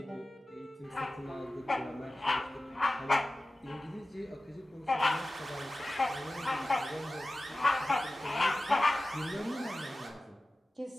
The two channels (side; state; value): both; normal; correlation 0.96